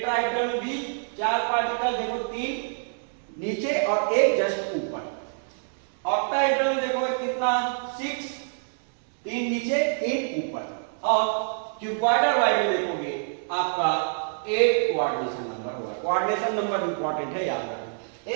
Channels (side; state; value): left; silent; digital silence